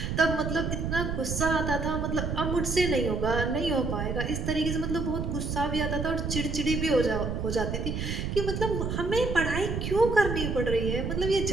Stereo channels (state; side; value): noise; right; rumble, 3 dB below the sound